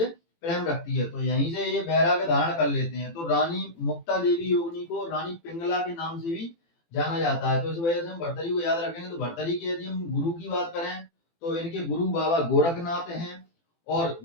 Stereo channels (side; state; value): right; late; 18 ms